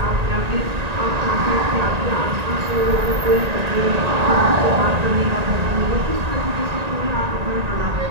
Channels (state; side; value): late; left; 1.9 ms